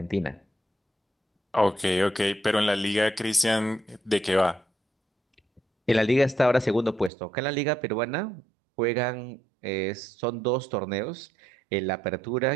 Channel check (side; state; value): left; drops out; at 7.1 s